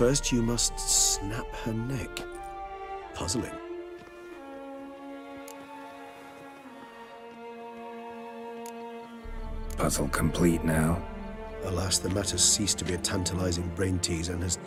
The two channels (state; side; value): identical; both; correlation 1.00